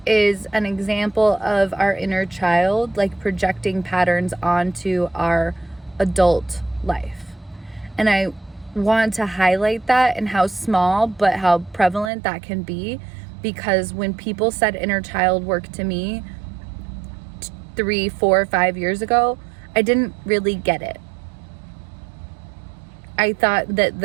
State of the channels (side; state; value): left; drops out; at 12.1 s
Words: is an example of our inner child, like, projecting patterns onto our adult life. And I want to highlight that and how small but how prevalent that can be, because when people said inner child work to me 3, 4, 5 years ago, I didn't really get it. I thought